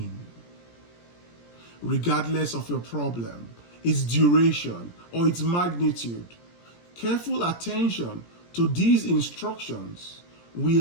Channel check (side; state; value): right; late; 17 ms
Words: Regardless of your problem, its duration, or its magnitude, careful attention to these instructions